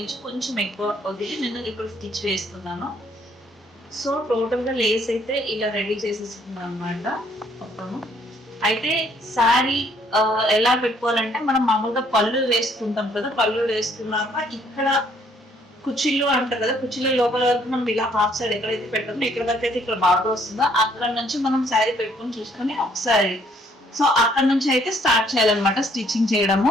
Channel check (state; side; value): normal; both; correlation 0.65